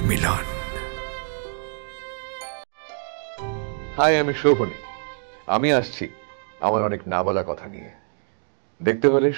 মিলন। হাই, আমি শোভনী। আমি আসছি আমার অনেক না বলা কথা নিয়ে। দেখতে হলে,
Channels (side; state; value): left; silent; digital silence